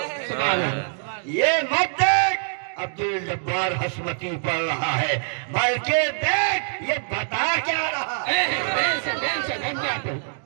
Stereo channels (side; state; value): left; silent; digital silence